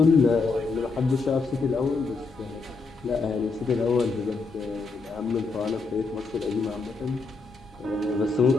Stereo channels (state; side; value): quieter; right; 4.1 dB